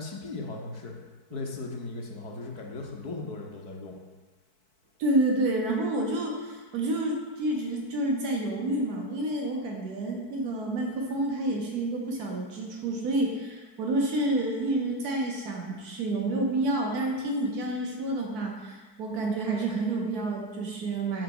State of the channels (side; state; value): left; late; 4.6 ms